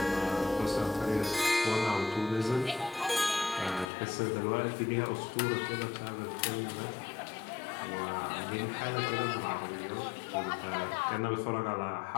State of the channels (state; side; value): drops out; right; at 3.9 s